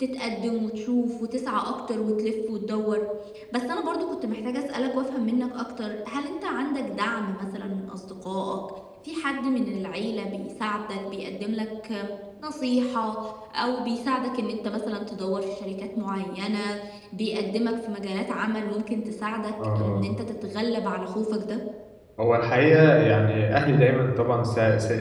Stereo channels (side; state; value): both; identical; correlation 1.00